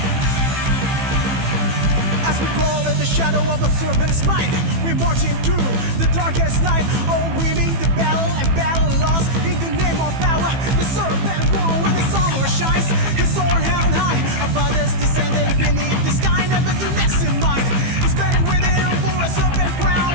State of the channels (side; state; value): left; late; 15 ms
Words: Shadow of a serpent's mind, we're marching through the darkest night, all winning the battle and battle lost in the name of power. The serpent won when the summer shines, his sword held high above us, descending beneath the sky, never to less in mind. He's burning within for a serpent crown,